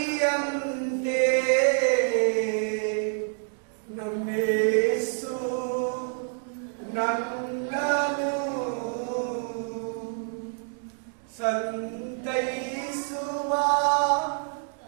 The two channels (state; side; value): silent; left; 60 dB below the other